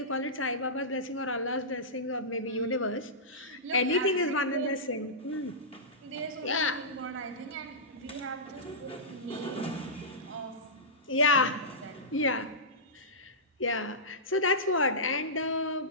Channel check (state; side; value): normal; both; correlation -0.17